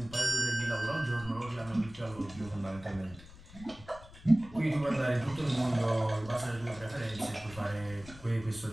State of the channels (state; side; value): noise; left; rumble, 18 dB below the sound